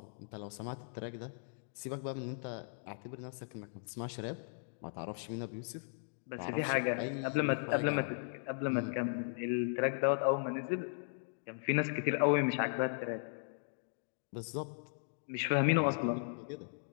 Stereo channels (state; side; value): silent; right; digital silence